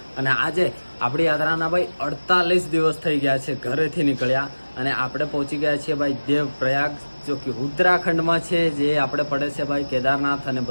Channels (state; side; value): inverted; both; correlation -1.00